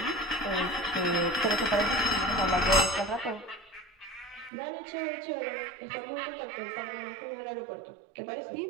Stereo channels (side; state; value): left; drops out; at 4.5 s